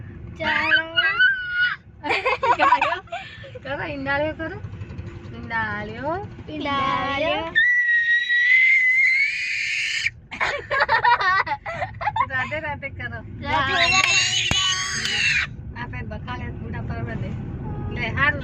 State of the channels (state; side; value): identical; both; correlation 1.00